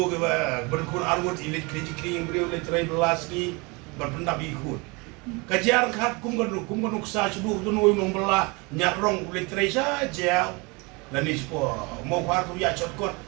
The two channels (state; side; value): quieter; left; 27.7 dB